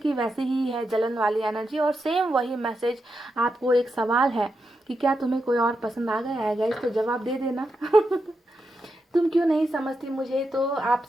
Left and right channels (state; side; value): normal; both; correlation 0.86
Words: वैसे ही है, जलन वाली एनर्जी। और सेम वही मैसेज आपको एक सवाल है कि क्या तुम्हें कोई और पसंद आ गया है गाइस, तो जवाब दे देना। तुम क्यों नहीं समझती मुझे, तो